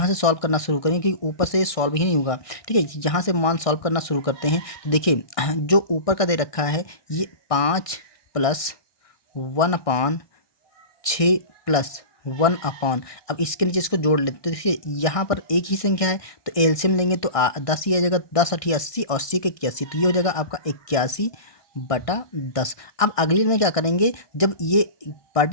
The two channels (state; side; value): late; right; 1.6 ms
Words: से सॉल्व करना शुरू करेंगे क्योंकि ऊपर से सॉल्व ही नहीं होगा, ठीक है। यहाँ से मान सॉल्व करना शुरू करते हैं। तो देखिए जो ऊपर का दे रखा है ये 5+1/6+1 अब इसके नीचे इसको जोड़ लेते, तो देखिए यहाँ पर एक ही संख्या है तो एलसीएम लेंगे तो 10 ही आ जाएगा। 10×8 = 80, 80 के 81, तो ये हो जाएगा आपका 81/10। अब अगली में क्या करेंगे, जब ये